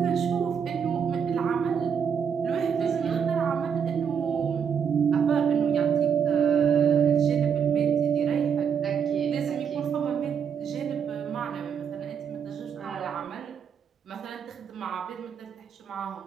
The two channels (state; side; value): quieter; left; 7.3 dB